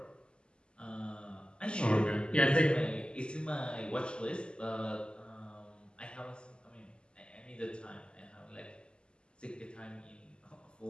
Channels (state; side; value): late; right; 0.050 ms